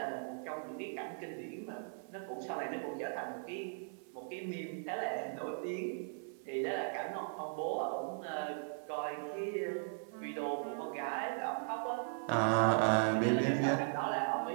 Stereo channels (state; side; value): silent; left; 52 dB below the other